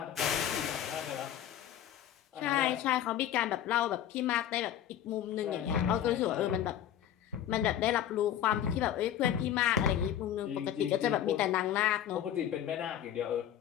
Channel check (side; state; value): right; quieter; 10.7 dB